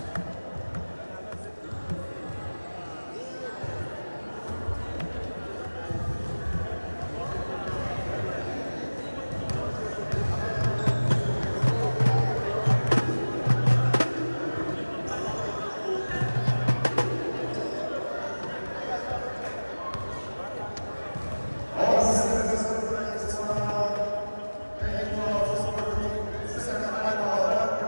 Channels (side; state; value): both; inverted; correlation -1.00